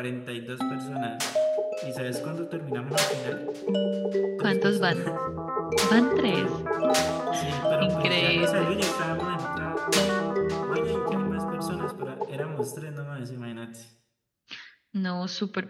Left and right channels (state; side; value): identical; both; correlation 1.00